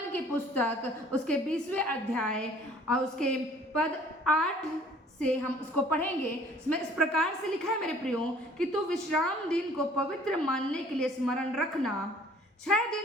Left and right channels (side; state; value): both; normal; correlation 0.54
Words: की पुस्तक उसके 20वें अध्याय और उसके पद 8 से हम उसको पढ़ेंगे। इसमें इस प्रकार से लिखा है, मेरे प्रियो, कि तू विश्राम दिन को पवित्र मानने के लिए स्मरण रखना। 6